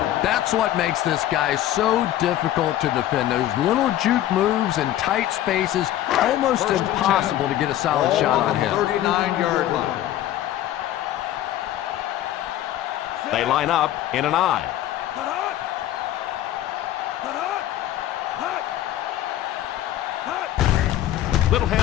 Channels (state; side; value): quieter; right; 13.0 dB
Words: That's what makes this guy so difficult to defend. Those little juke moves in tight spaces, almost impossible to get a solid shot on him. 39-yard line. They line up in an I. Little